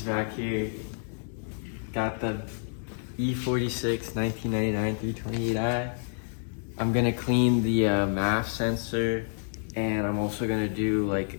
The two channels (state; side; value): silent; right; 59 dB below the other